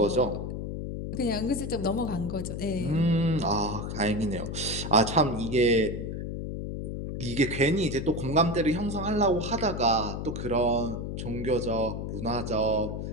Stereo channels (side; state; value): left; noise; hum, 5 dB below the sound